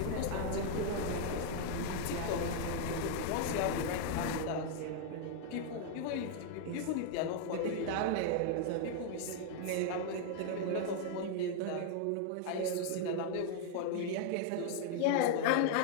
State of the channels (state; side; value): different; both; correlation 0.00